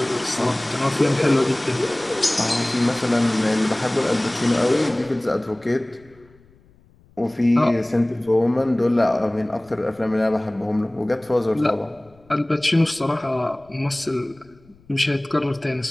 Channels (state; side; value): noise; left; rumble, 29 dB below the sound